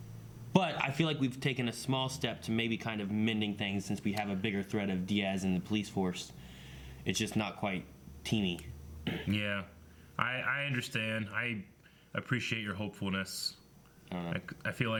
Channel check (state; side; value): identical; both; correlation 1.00